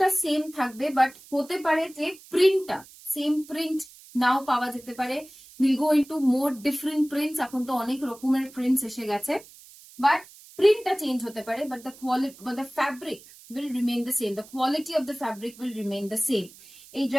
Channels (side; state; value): right; noise; hiss, 21 dB below the sound